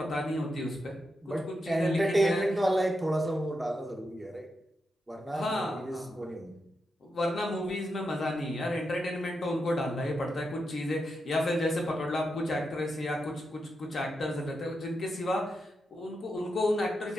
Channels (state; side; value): normal; both; correlation 0.86